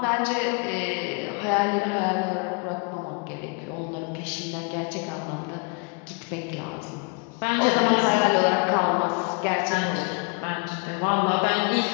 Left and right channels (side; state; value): right; quieter; 33.9 dB